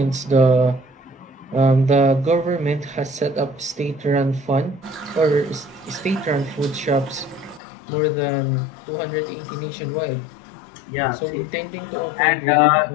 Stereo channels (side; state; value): right; drops out; at 7.6 s